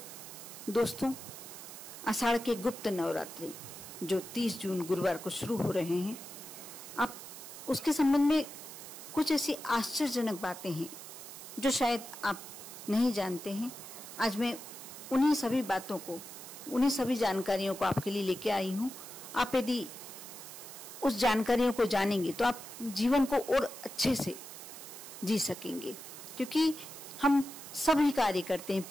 दोस्तों, आषाढ़ के गुप्त नवरात्रि जो 30 जून गुरुवार को शुरू हो रहे हैं, आप उसके संबंध में कुछ ऐसी आश्चर्यजनक बातें हैं जो शायद आप नहीं जानते हैं। आज मैं उन्हीं सभी बातों को, उन्हीं सभी जानकारियों को आपके लिए लेके आई हूँ। आप यदि उस जानकारियों को जानेंगे तो आप जीवन को और अच्छे से जी सकेंगे, क्योंकि हम सभी कार्य करते हैं,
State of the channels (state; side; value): noise; right; hiss, 13 dB below the sound